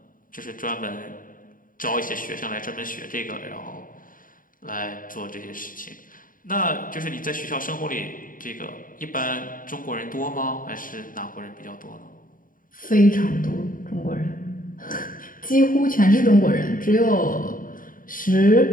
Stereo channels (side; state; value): right; late; 0.40 ms